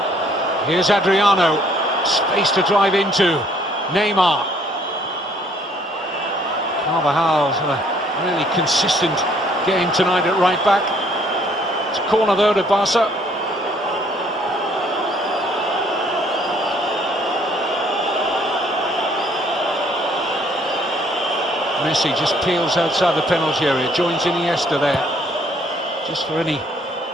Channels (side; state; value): both; normal; correlation 0.62